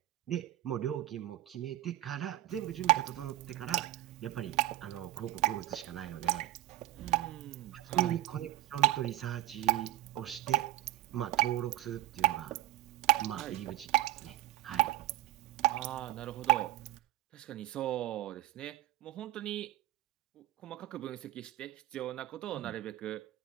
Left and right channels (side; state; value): left; quieter; 15.2 dB